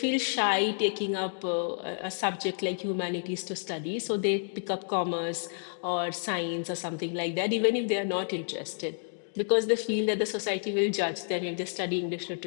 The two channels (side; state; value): right; silent; digital silence